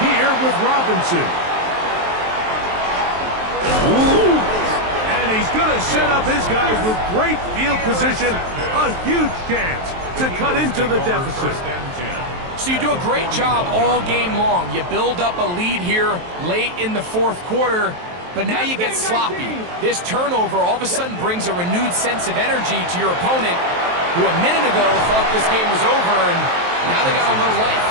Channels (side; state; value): left; late; 23 ms